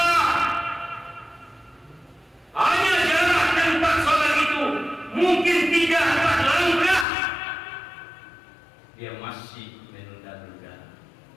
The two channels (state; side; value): drops out; right; at 7.1 s